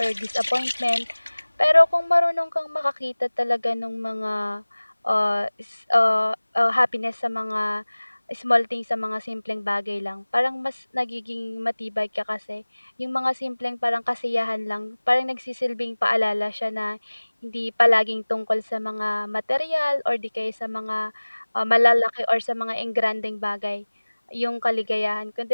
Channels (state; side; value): inverted; both; correlation -1.00